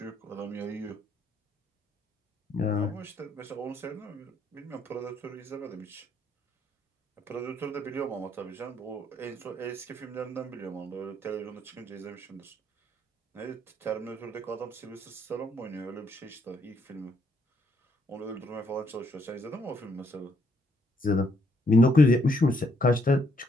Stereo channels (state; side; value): normal; both; correlation 0.71